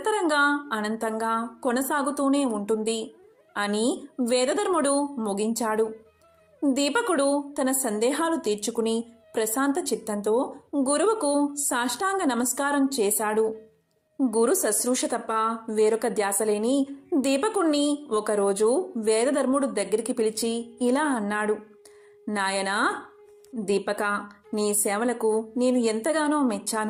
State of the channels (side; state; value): both; identical; correlation 1.00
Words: అనంతంగా కొనసాగుతూనే ఉంటుంది అని వేదధర్ముడు ముగించాడు. దీపకుడు తన సందేహాలు తీర్చుకుని ప్రశాంత చిత్తంతో గురువుకు సాష్టాంగ నమస్కారం చేశాడు. గురు శుశ్రూష తప్ప వేరొక ధ్యాసలేని దీపకుణ్ణి ఒకరోజు వేదధర్ముడు దగ్గరికి పిలిచి ఇలా అన్నాడు. నాయనా దీపక, నీ సేవలకు నేను ఎంతగానో